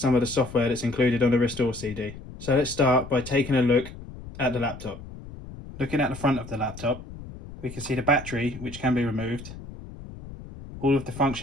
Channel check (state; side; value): noise; left; rumble, 14 dB below the sound